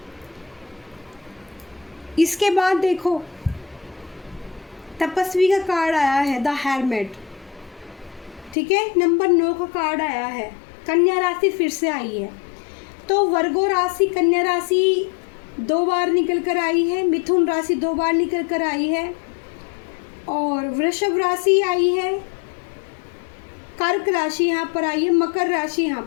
इसके बाद देखो तपस्वी का कार्ड आया है, द हेरमिट, ठीक है। नंबर 9 का कार्ड आया है, कन्या राशि फिर से आई है। तो वर्गो राशि, कन्या राशि 2 बार निकल कर आई है, मिथुन राशि 2 बार निकल कर आई है, और वृषभ राशि आई है, कर्क राशि यहाँ पर आई है, मकर राशि यहाँ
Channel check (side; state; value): right; drops out; at 8.6 s